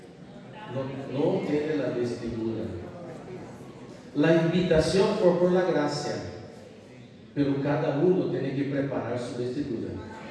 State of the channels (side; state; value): both; identical; correlation 1.00